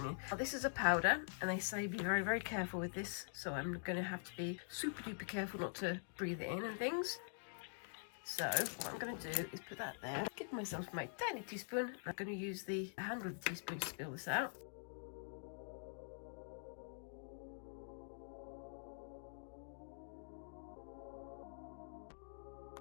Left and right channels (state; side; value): silent; right; digital silence